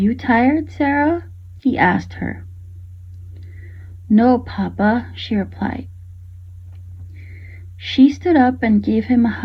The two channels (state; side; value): identical; both; correlation 1.00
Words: tired, Sarah?" he asked her. "No, Papa," she replied. She stood up and gave him a